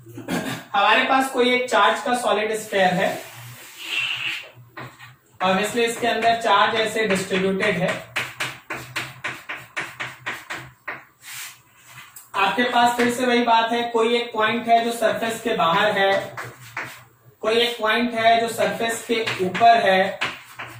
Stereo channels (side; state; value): both; identical; correlation 1.00